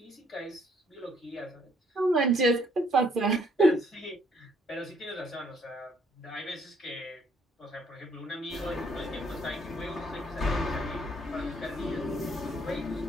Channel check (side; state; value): both; normal; correlation 0.66